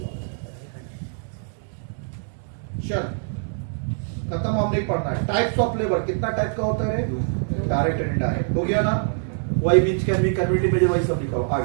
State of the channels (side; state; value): left; silent; digital silence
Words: चल खत्म, हम नहीं पढ़ना है। टाइप्स ऑफ लेबर कितना टाइप का होता है? डायरेक्ट एंड इनडायरेक्ट हो गया ना? वही बीच कैन बी कन्वर्टेड में वही सब लिखा हो।